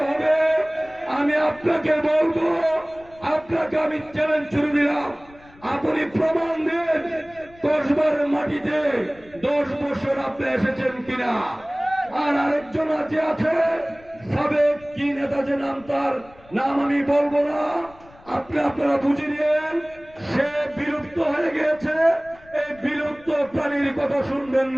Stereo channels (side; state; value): left; noise; rumble, 25 dB below the sound